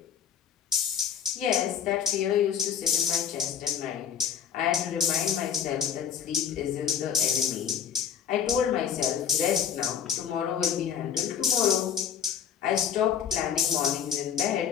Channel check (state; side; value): quieter; right; 8.3 dB